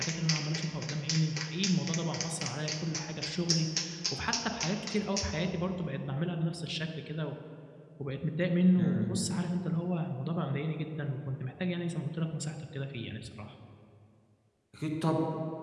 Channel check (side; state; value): both; identical; correlation 1.00